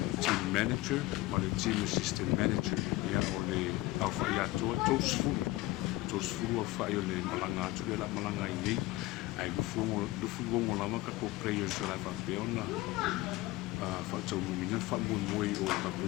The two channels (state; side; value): quieter; right; 18.6 dB